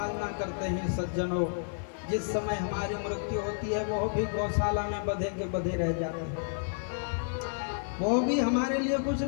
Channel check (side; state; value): right; silent; digital silence